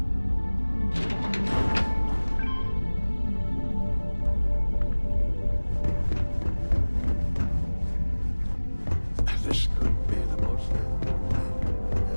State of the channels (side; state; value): both; inverted; correlation -1.00